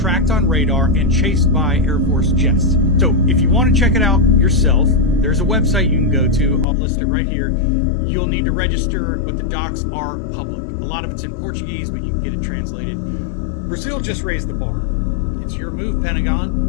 on radar and chased by Air Force jets. So if you want to check it out yourself, there's a website you can go to. I'll list it right here. You'll need to register, but the docs are public. A lot of it's in Portuguese, but you can get it translated. Brazil just raised the bar. It's your move,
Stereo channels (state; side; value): drops out; right; at 6.7 s